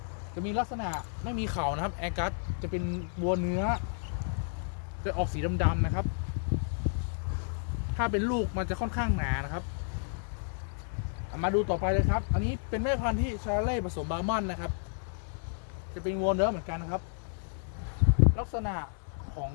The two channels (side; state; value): right; silent; digital silence